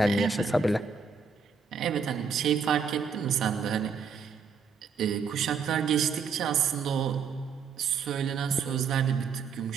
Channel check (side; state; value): left; quieter; 5.7 dB